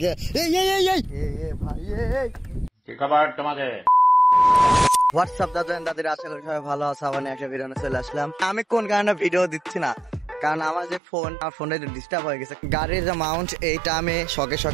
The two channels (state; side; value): drops out; left; at 11.0 s